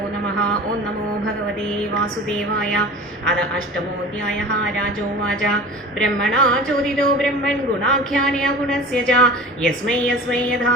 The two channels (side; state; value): both; normal; correlation 0.38